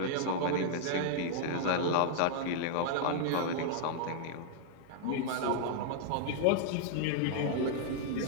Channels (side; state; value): both; different; correlation -0.01